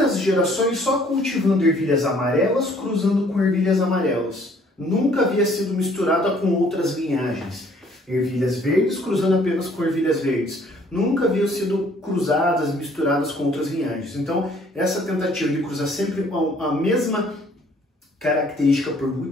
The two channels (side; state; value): both; normal; correlation 0.60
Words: gerações só cultivando ervilhas amarelas, cruzando com ervilhas amarelas. Nunca havia sido misturada com outras linhagens. Ervilhas verdes cruzando apenas com ervilhas verdes. Nunca haviam sido cruzadas, misturadas com outras linhagens. Então, essa tentativa de cruzar sempre a mesma característica por